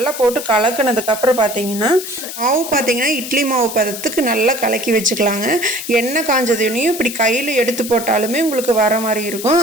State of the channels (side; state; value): left; noise; hiss, 9 dB below the sound